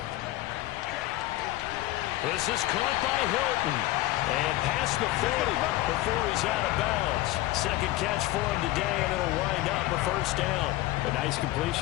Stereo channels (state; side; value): quieter; right; 16.8 dB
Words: This is caught by Hilton. And past the 40 before he's out of bounds. Second catch for him today, and it'll wind up a 1st down. A nice